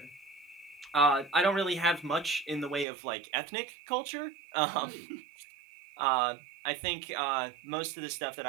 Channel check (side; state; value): left; drops out; at 2.9 s